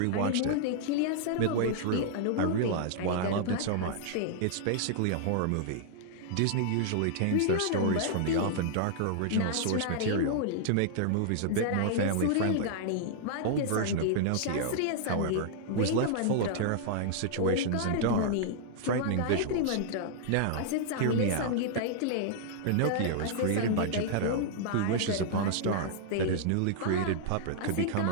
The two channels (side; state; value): both; different; correlation -0.01